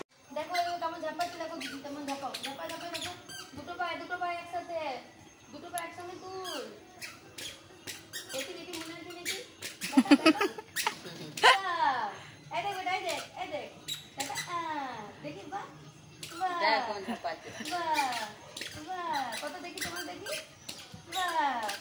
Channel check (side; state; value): both; identical; correlation 1.00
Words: দেখো ও কেমন ঝাপাচ্ছে, দেখো দিদি কেমন ঝাপাও। ঝাপাও ঝাপাও ঝাপাও। দুটো পায়ে একসাথে। দুটো পায়ে একসঙ্গে তুল। দেখি দেখি মনে হচ্ছে দেখি। এই দেখ বেটা, এই দেখ। দেখা দেখি বাহ। বাহ। দেখো ঝাপাচ্ছে। বাহ। বাহ। কত দেখি তোমার দেখি। বাহ।